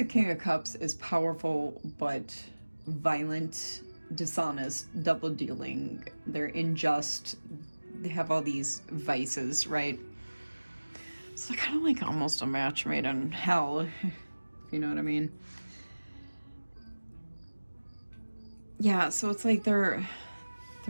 King of Cups is powerful but violent, dishonest, double-dealing. They're unjust. They have all these vices, right? So kind of like almost a match made in hell, if you know what I mean. Yeah, so it's like they're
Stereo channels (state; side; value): inverted; both; correlation -1.00